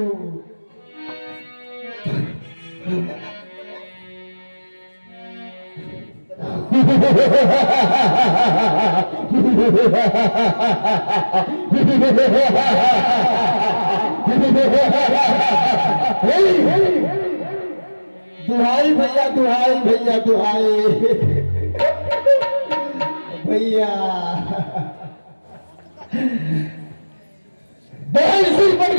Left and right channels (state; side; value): inverted; both; correlation -1.00